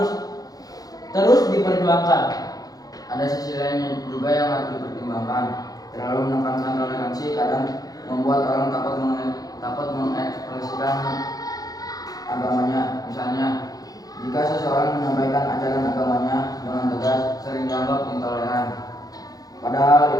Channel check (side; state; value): right; late; 0.18 ms